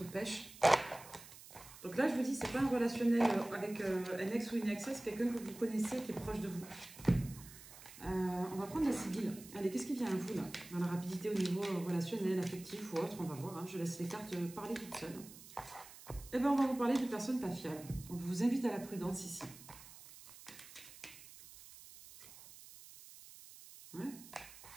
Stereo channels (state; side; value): noise; right; hiss, 17 dB below the sound